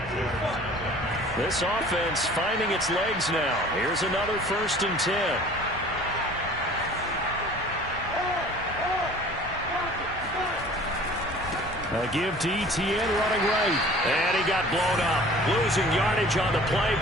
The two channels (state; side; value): normal; both; correlation 0.47